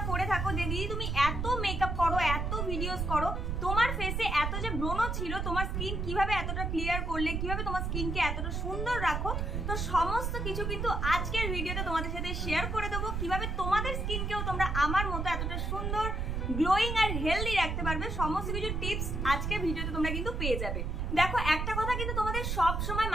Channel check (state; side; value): noise; right; rumble, 2 dB below the sound